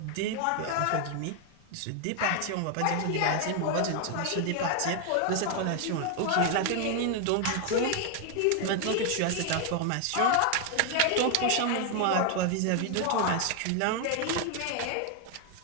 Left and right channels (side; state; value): both; different; correlation 0.00